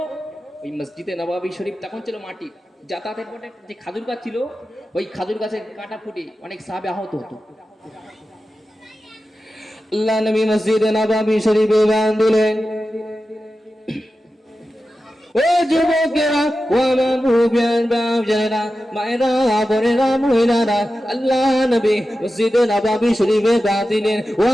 ওই মসজিদে নববী শরীফ তখন ছিল মাটি, যাতায়াতের পথে যে খাজুর গাছ ছিল, ওই খাজুর গাছের কাঁটা ফুটে অনেক সাহাবী আহত হতো। আল্লাহ নবী মসজিদে নববী শরীফে বাং দিলেন। ও যুবকেরা, ও আমার মুরব্বিয়ান বাপজানেরা, মায়েরা, বোনেরা, মহিলারা, আল্লাহ নবী মসজিদে নববী শরীফে বাং দিলেন। ও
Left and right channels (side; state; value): both; normal; correlation 0.93